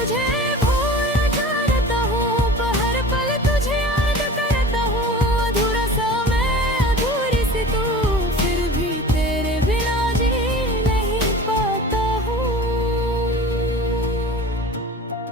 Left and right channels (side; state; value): both; normal; correlation 0.38